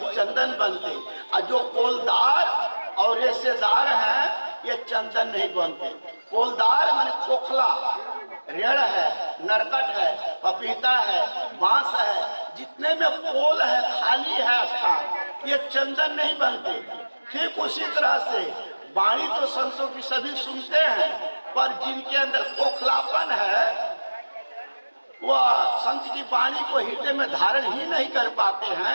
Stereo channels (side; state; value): both; inverted; correlation -1.00